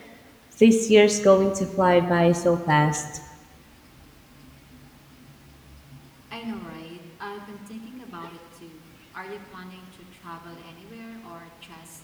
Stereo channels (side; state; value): both; identical; correlation 1.00